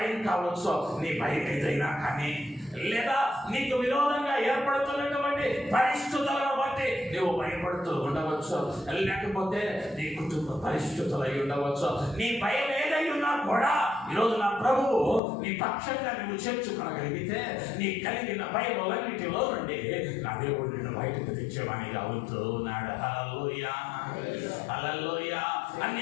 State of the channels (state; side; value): drops out; right; at 15.2 s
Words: కావచ్చు. నీ భయం ఏదైనా కానీ, లేదా నీకు విరోధంగా ఏర్పడుతున్నటువంటి పరిస్థితులను బట్టి నువ్వు భయపడుతూ ఉండవచ్చు, లేకపోతే నీ కుటుంబ పరిస్థితులు అయి ఉండవచ్చు. నీ భయం ఏదై ఉన్నా కూడా ఈరోజు నా ప్రభువు నీ పక్షంగా నువ్వు చేర్చుకోగలిగితే, నీ కలిగిన భయములన్నిటిలో నుండి నా దేవుడు నిన్ను బయటకు తెచ్చేవానిగా అవుతూ ఉన్నాడు. హల్లెలూయా, హల్లెలూయా.